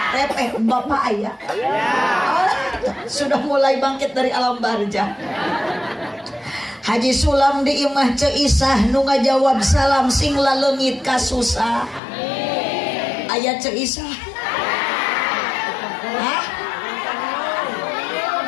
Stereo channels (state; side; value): drops out; right; at 12.0 s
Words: repeh bapak ayah sudah mulai bangkit dari alam barzah. Haji Sulam di imah Ceisah nu ngajawab salam sing laleungit ka susah aya Ceisah hah